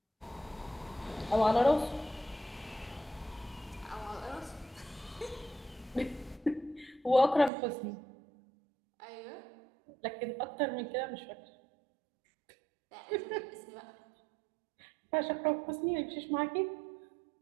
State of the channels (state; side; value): drops out; left; at 7.5 s